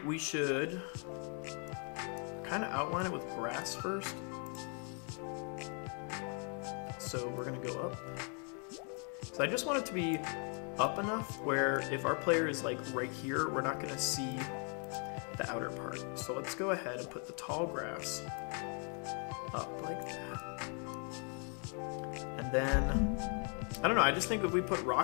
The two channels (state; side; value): quieter; right; 39.5 dB